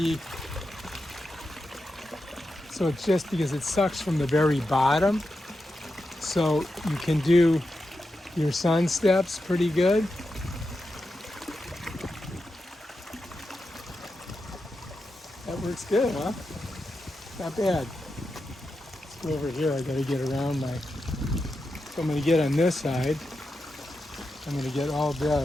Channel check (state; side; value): normal; both; correlation 0.88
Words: so it's just because it sucks from the very bottom. So you can do your sun steps pretty good. That works good, huh? Not bad. Go over here, I gotta get around my, so I'm gonna get on this side. I'm gonna get all